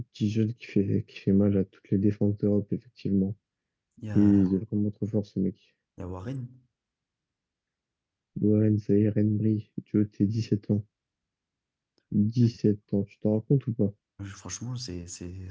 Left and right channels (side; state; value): both; identical; correlation 1.00